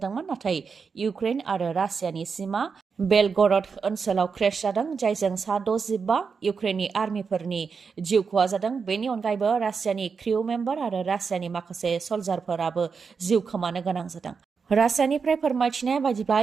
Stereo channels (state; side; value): quieter; left; 5.5 dB